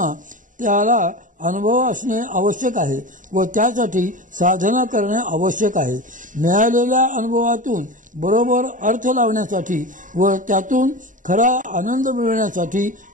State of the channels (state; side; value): late; left; 0.38 ms